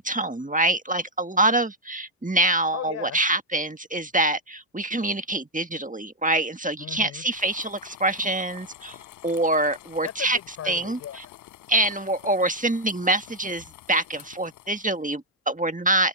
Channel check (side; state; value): both; normal; correlation -0.01